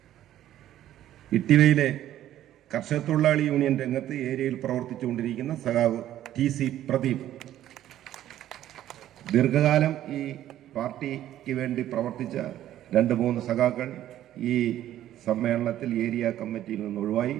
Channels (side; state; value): left; quieter; 12.5 dB